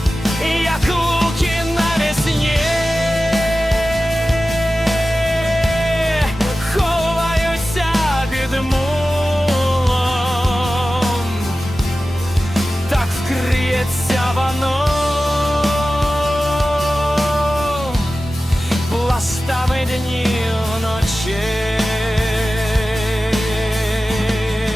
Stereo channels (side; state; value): both; normal; correlation 0.95